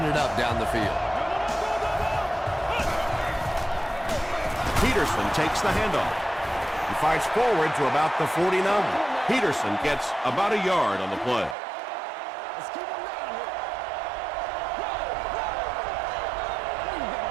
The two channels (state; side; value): drops out; left; at 11.6 s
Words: it up down the field. Peterson takes the handoff. He fights forward to about the 49. Peterson gets about a yard on the play.